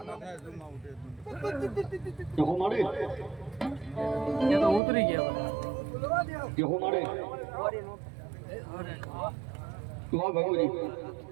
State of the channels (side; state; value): left; drops out; at 4.8 s